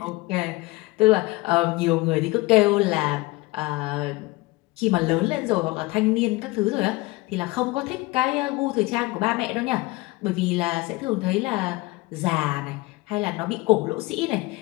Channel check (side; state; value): right; quieter; 21.9 dB